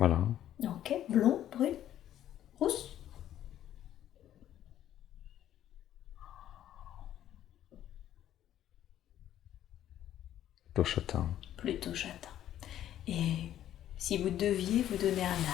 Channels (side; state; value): right; quieter; 11.7 dB